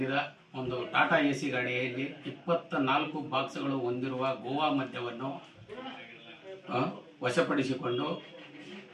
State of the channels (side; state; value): both; identical; correlation 1.00